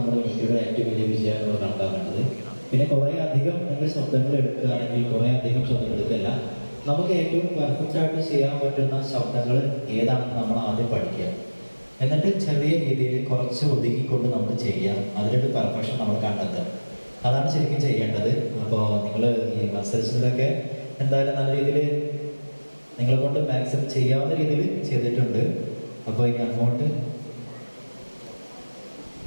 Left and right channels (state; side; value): inverted; both; correlation -1.00